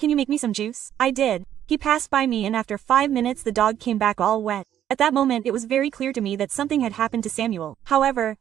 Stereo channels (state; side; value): quieter; left; 10.7 dB